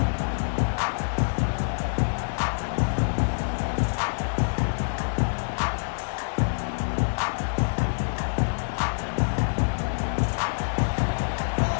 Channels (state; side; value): silent; right; 61 dB below the other